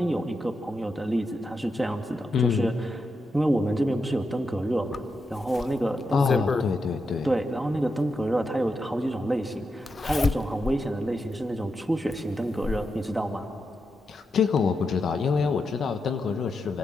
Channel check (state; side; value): normal; both; correlation 0.86